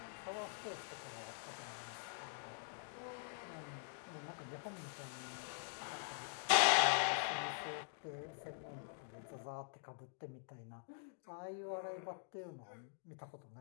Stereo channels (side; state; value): right; silent; digital silence